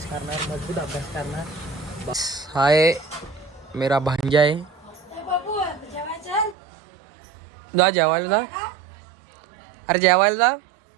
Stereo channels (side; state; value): left; drops out; at 6.6 s